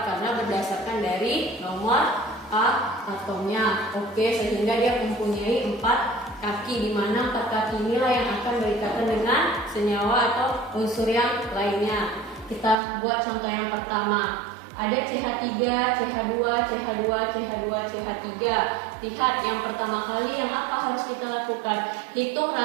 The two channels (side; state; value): left; drops out; at 12.8 s